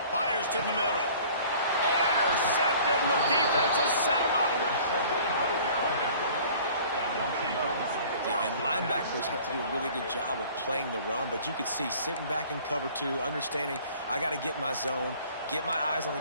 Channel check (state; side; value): inverted; both; correlation -0.49